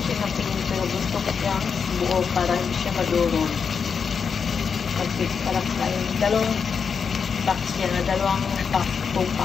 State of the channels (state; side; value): quieter; right; 6.1 dB